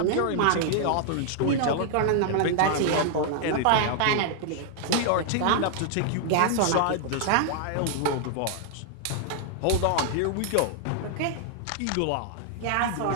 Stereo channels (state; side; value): different; both; correlation 0.00